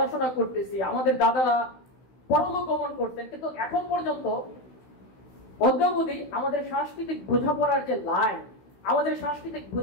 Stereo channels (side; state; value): right; late; 16 ms